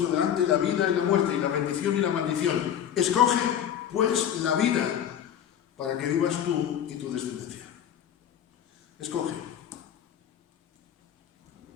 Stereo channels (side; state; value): right; quieter; 9.7 dB